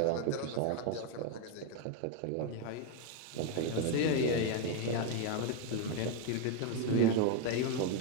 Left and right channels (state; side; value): different; both; correlation 0.01